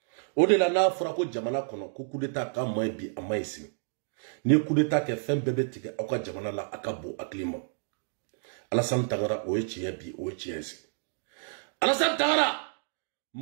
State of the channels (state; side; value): silent; left; digital silence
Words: Au-delà de Frako Jamana Kono, coup d'état, quand moi, bi, à Maïsi. Ni coup d'état qui fait un bébé tigre, à quoi Jamana la Akabo, à Klima. Alassane Tangara, Oechi, bi, Oechi. Alassane Tangara!